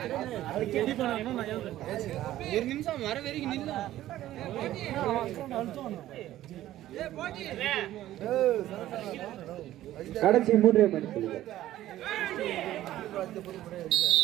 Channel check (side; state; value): left; quieter; 14.0 dB